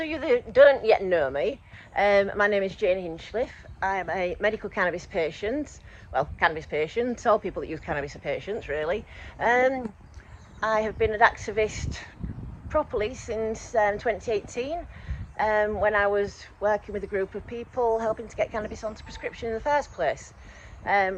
you that don't yet know me, my name is Jane Hinchliffe. I am a medical cannabis patient. Well, cannabis patient. All people that use cannabis are patients, really. I have been an activist properly since 2018. When I was working with a group of people helping to get cannabis onto prescription in the first place.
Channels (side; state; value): both; identical; correlation 1.00